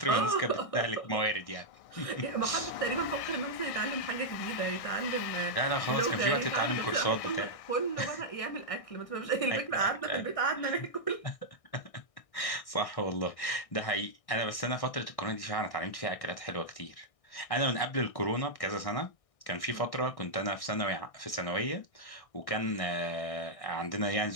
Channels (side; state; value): right; late; 1.6 ms